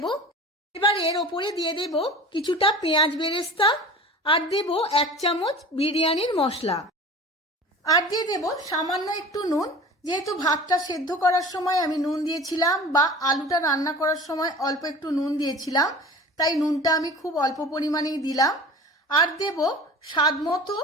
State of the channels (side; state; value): both; normal; correlation 0.38